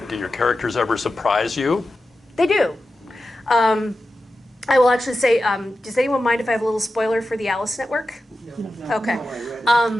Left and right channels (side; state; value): both; normal; correlation 0.92